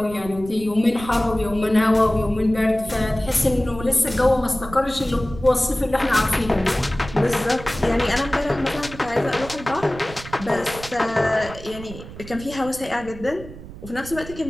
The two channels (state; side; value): noise; right; rumble, 14 dB below the sound